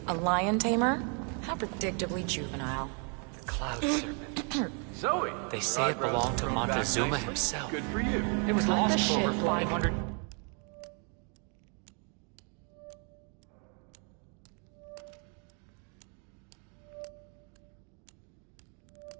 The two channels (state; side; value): quieter; left; 38.2 dB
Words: A lion tamer? How predictably juvenile. The Cloud Serpent. Zoe! They say it belonged to Montezuma himself. Good for you. It was Cut lost the for over shit, Blake. 500...